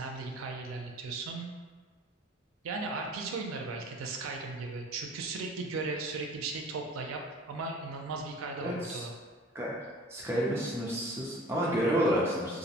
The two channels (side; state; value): both; normal; correlation 0.45